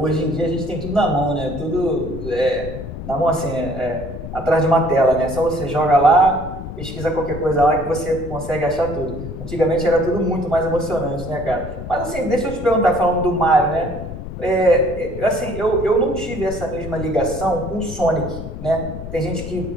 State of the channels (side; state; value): left; noise; rumble, 9 dB below the sound